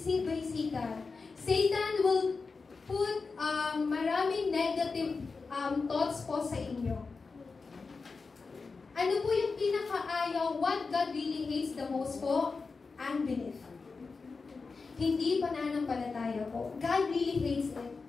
by Satan. Satan will put maraming negative thoughts po sa inyo. Ano po yung pinakaayaw? What God really hates the most po? Unbelief. Hindi pananampalataya po. God really hates it.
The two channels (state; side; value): quieter; right; 4.4 dB